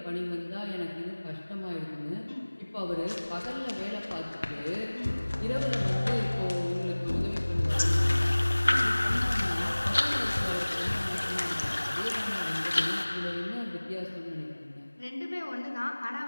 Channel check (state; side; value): inverted; both; correlation -1.00